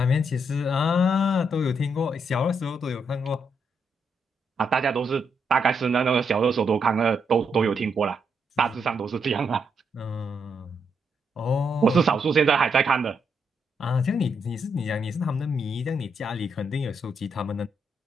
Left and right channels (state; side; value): normal; both; correlation 0.79